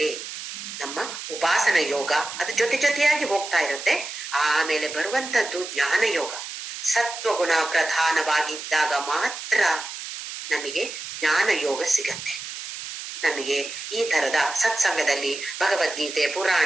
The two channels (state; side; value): noise; right; hiss, 9 dB below the sound